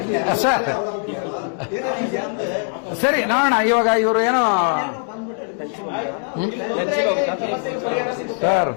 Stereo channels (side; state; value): right; silent; 56 dB below the other